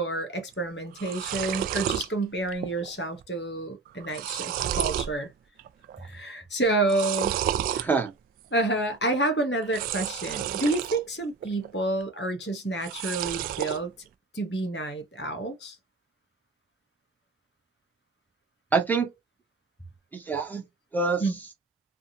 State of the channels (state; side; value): quieter; left; 3.4 dB